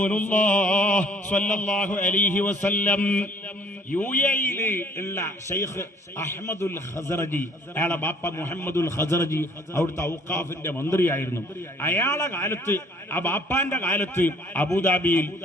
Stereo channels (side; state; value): both; normal; correlation 0.56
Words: സ്വല്ലല്ലാഹു അലൈഹി വസല്ലം. യുഎഇയിൽ ഉള്ള ശൈഖ് അഹ്മദുൽ ഖസറജി, അയാളെ ബാപ്പ മുഹമ്മദുൽ ഖസറജി അവിടുത്തെ ഔഖാഫിന്റെ മന്ത്രിയായിരുന്നു. അയാളെ കാലത്ത്, ആ ബാപ്പാന്റെ കാലത്ത് അബുദാബിയിൽ